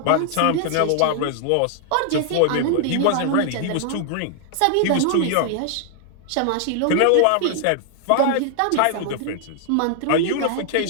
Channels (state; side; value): different; both; correlation 0.00